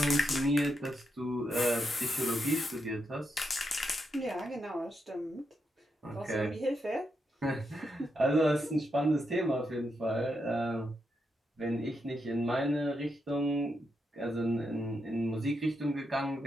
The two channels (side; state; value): both; normal; correlation 0.83